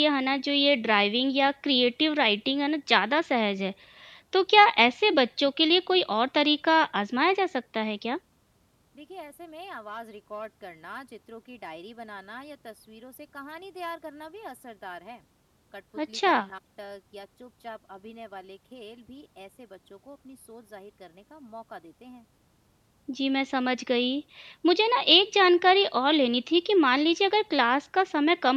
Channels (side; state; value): both; identical; correlation 1.00